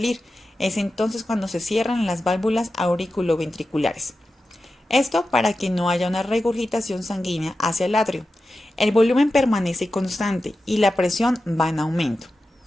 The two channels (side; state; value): both; normal; correlation 0.92